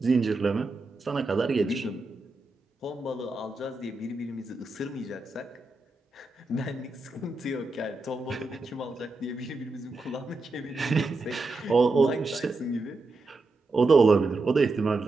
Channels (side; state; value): left; quieter; 3.2 dB